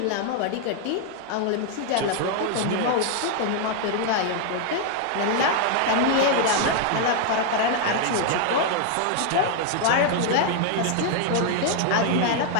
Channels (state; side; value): different; both; correlation 0.00